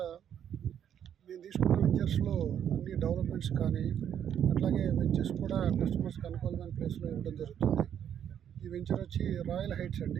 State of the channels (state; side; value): quieter; left; 9.3 dB